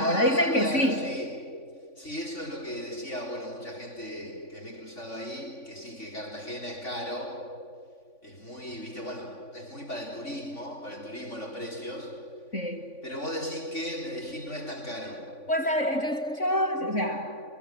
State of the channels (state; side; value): late; right; 3.5 ms